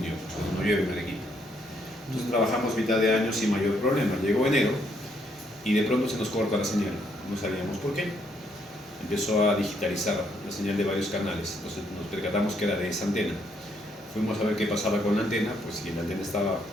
cuando no llueve en Arequipa. Entonces trabajamos mitad de año sin mayor problema. Llegó enero y de pronto se nos corta la señal. No sabíamos por qué. Empezó a digitalizar la señal de varios canales. Entonces nos percatamos que era de esa antena. Fuimos a ver qué pasaba con la antena, pues si la antena estaba,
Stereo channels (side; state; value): both; normal; correlation 0.72